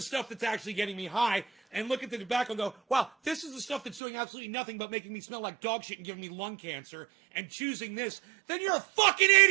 stuff that's actually getting me high, and look at the tobacco and go, wow, this is the stuff that's doing absolutely nothing but making me smell like dog shit and giving me lung cancer, and choosing this, then you're a fucking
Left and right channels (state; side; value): drops out; left; at 4.0 s